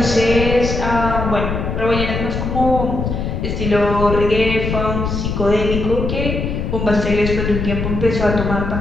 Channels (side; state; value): left; noise; rumble, 3 dB below the sound